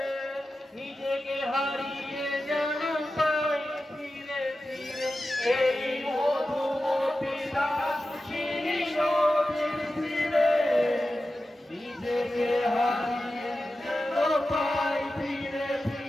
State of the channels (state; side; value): normal; both; correlation 0.93